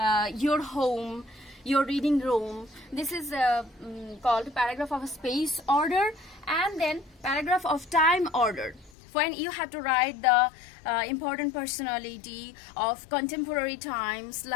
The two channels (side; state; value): right; drops out; at 8.9 s